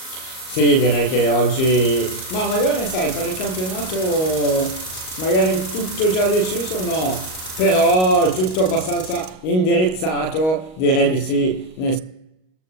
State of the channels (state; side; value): late; right; 38 ms